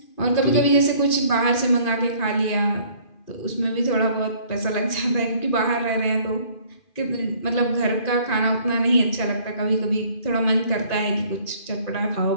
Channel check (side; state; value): right; late; 2.4 ms